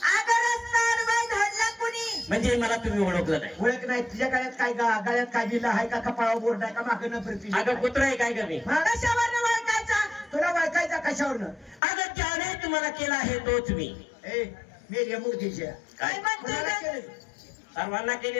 अगं रस्ता अडवाय धरला कुणी? म्हणजे मला तुम्ही ओळखलं नाही. ओळख नाही. तुझ्या गळ्यात काय गळ्यात काय दिलं आहे का? कपाळावर बोर्ड आहे का? मागं प्रति अगं कुत्रा आहे काय कमी? कशावर ओळखायचा? तुला ओळखायचा कशावरनं? अगं ज्याने तुम्हाला केला आहे तोच मी. ए मेल्या मूर्तीच्या काय म्हणतोय कोणाला ग? केलं? सर्वांना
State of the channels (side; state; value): right; drops out; at 11.8 s